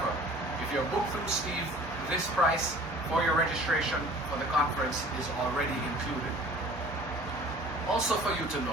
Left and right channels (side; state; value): both; normal; correlation 0.47